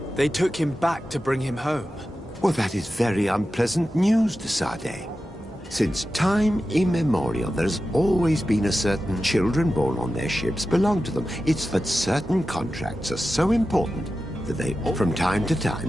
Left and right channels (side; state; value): both; normal; correlation 0.92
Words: They took him back to bring him home. Well, that is very unpleasant news, de Sade. Since time immemorial, there's always been a certain children born on their ships belong to them. It's that certain contracts are so important that they... From time to